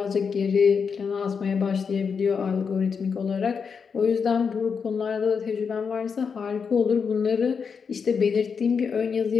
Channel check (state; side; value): quieter; right; 6.0 dB